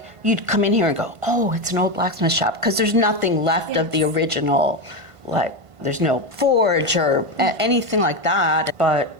you'd come in here and go, oh, it's an old blacksmith shop, because there's nothing left of the original, like there's no forge or anything like that, but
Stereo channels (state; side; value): late; left; 1.5 ms